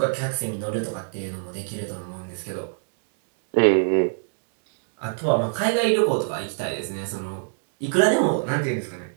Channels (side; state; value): left; silent; digital silence